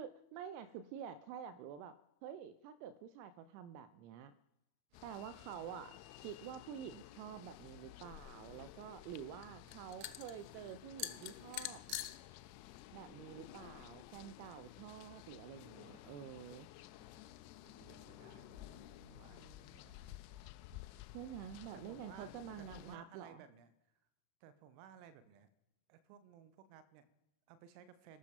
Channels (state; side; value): late; left; 35 ms